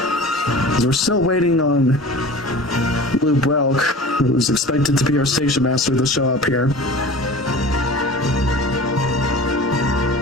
We're still waiting on Blue Brelk, who's expected to be our station master, to show up here.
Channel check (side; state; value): both; normal; correlation 0.38